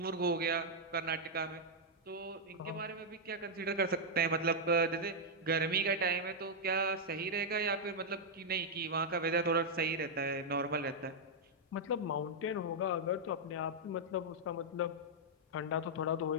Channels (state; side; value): normal; both; correlation -0.04